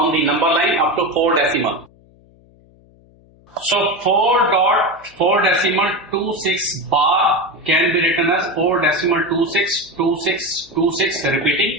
the number line up to 4 decimal. So 4 decimal 26 bar can be written as 4 decimal 26 26 26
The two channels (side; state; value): left; noise; hum, 29 dB below the sound